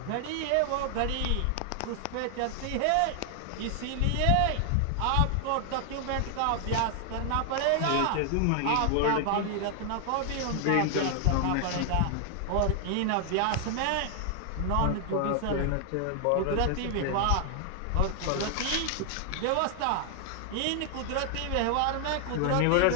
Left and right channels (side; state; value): both; different; correlation 0.00